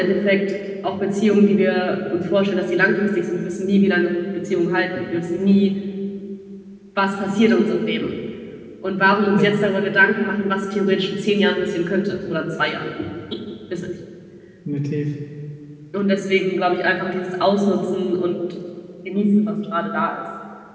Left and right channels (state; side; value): identical; both; correlation 1.00